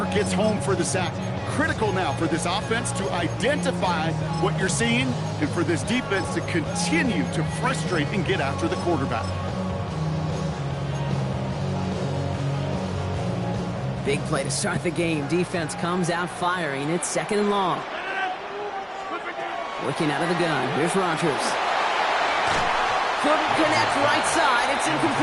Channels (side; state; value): both; identical; correlation 1.00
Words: gets home for the sack. Critical now for this offense to identify what you're seeing and for this defense to continue to frustrate and get after the quarterback. Big play to start the game. Defense comes out firing. It's 2nd and long. Looking out of the gun. Here's Rodgers. Couldn't connect right side. It's